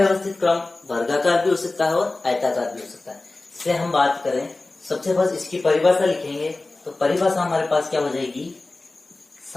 क्रम वर्गाकार भी हो सकता है और आयताकार भी हो सकता है। इससे हम बात करें, सबसे फर्स्ट इसकी परिभाषा लिखेंगे तो परिभाषा हमारे पास क्या हो जाएगी?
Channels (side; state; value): right; quieter; 3.2 dB